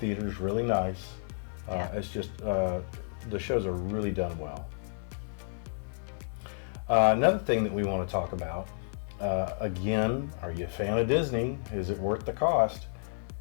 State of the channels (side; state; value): right; silent; digital silence